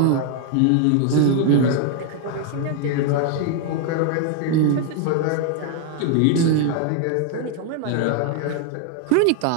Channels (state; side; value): different; both; correlation 0.00